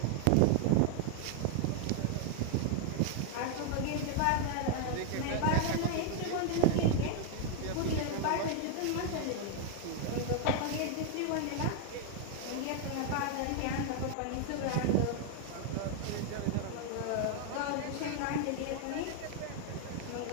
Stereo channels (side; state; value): both; different; correlation 0.00